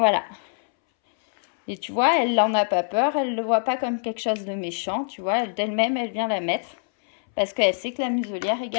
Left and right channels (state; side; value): silent; right; 62 dB below the other